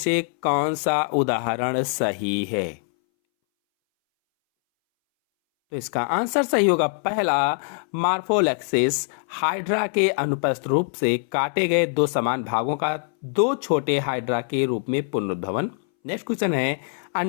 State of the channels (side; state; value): right; silent; 62 dB below the other